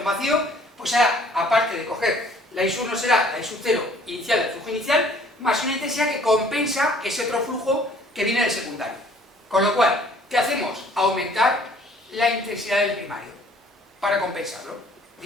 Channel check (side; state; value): both; normal; correlation 0.56